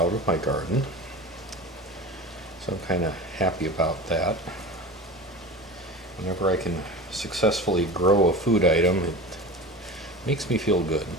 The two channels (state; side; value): normal; both; correlation 0.32